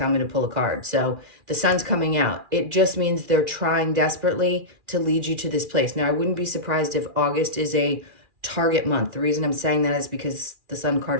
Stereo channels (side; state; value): left; late; 2.4 ms